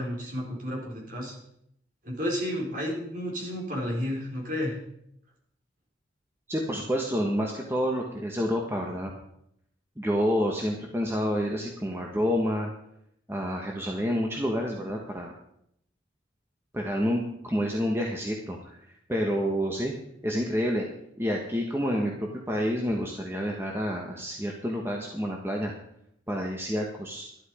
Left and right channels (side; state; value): both; normal; correlation 0.77